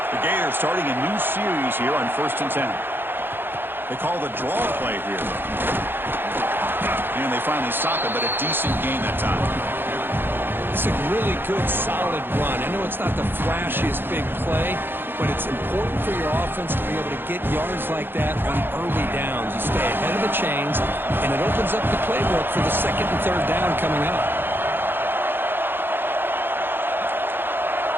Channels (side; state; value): left; late; 0.10 ms